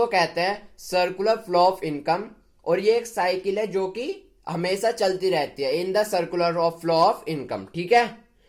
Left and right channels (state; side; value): identical; both; correlation 1.00